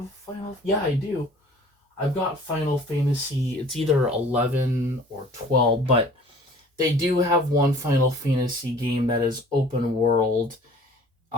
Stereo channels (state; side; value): normal; both; correlation 0.49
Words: Final, yeah, I do. I've got Final Fantasy, it's either 11 or 12, but they do have one Final Fantasy game that is open world.